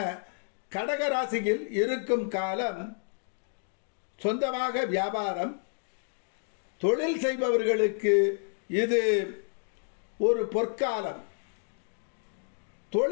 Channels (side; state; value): right; silent; digital silence